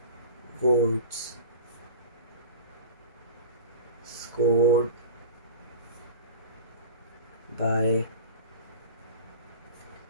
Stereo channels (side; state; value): both; inverted; correlation -0.36